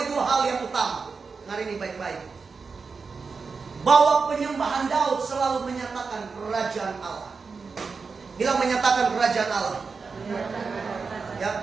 dua hal yang utama. Hari ini baik-baik. Bahwa penyembahan Daud selalu menyatakan kerajaan Allah. Bilang menyatakan kerajaan Allah.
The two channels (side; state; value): left; quieter; 4.9 dB